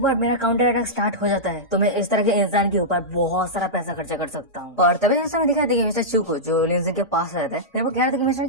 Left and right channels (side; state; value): both; normal; correlation -0.11